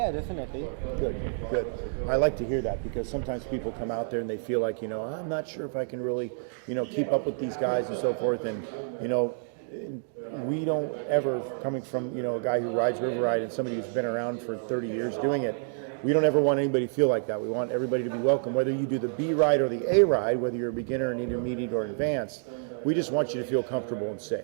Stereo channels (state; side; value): silent; left; digital silence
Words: definitely. Good. I like to hear that because sometimes people come out there and they feel like, I'm not sure if I can really, keep up with these guys and so forth. And, we don't ever, coming from, a guy who rides River Ride and somebody who's been around for 30 years doing it, we don't ever want anybody to feel like that. We want everybody to be welcome, whether you do the B ride or the A ride, whether you're a beginner, an intermediate, or advanced. We just want you to feel comfortable and